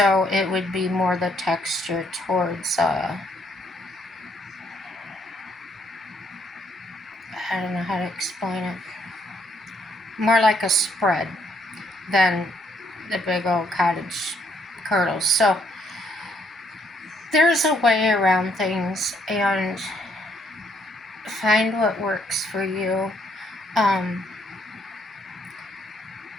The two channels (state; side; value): normal; both; correlation 0.70